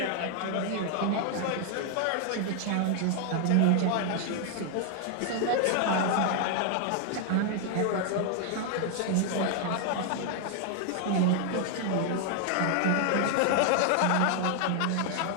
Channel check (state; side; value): different; both; correlation 0.00